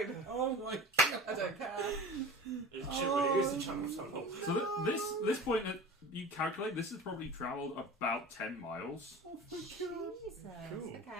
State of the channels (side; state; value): both; normal; correlation 0.37